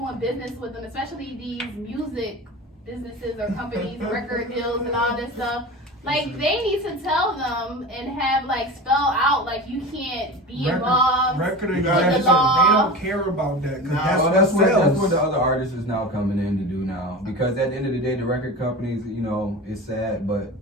business with them, especially these music businesses or companies, record deals and all this stuff, like they need to tell them and have like spell out like you can't be involved. Record You got executives, the law. they don't care about that because Nah, that's Well, what that's sells. what the other artists is now coming in to do now. Because at the end of the day, the record companies, it's sad, but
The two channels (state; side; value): normal; both; correlation 0.30